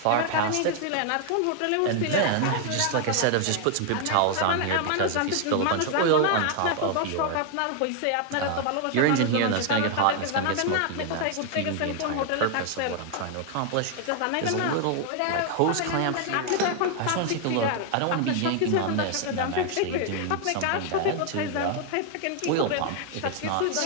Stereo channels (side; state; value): both; different; correlation 0.00